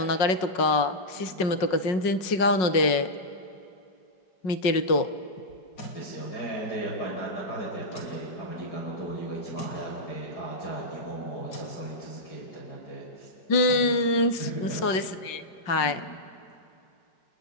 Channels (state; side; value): late; right; 5.5 ms